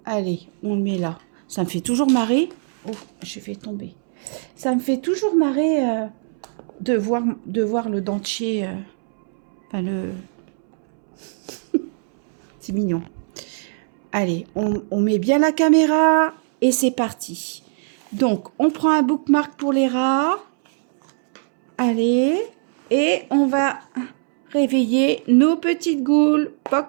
Allez, on le met là. Ça me fait toujours marrer. Oh, je vais tomber. Ça me fait toujours marrer de voir le dentier. Enfin, le... C'est mignon. Allez, on met bien la caméra et c'est parti. Donc, on prend un bookmark pour les rats. Allez, et on va réveiller nos petites goules.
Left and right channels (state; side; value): silent; left; 65 dB below the other